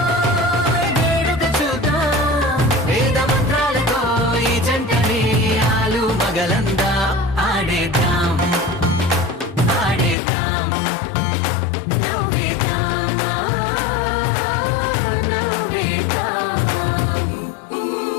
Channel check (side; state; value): right; drops out; at 10.2 s